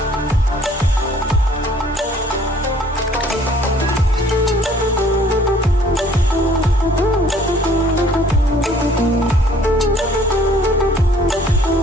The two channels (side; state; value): both; normal; correlation 0.57